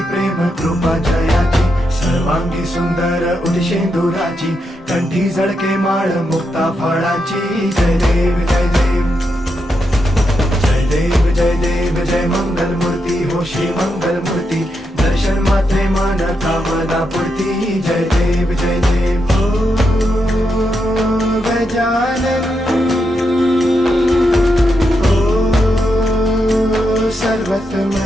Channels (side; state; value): both; normal; correlation 0.83